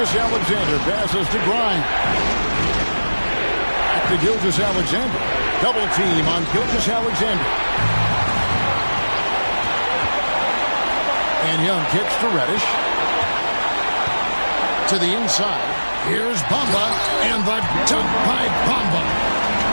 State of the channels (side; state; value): both; inverted; correlation -1.00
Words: passes to Grimes. Back to Gilgeous-Alexander. Double team on Gilgeous-Alexander. And Young kicks to Reddish. To the inside. Here's Bamba. And the dunk by Bamba.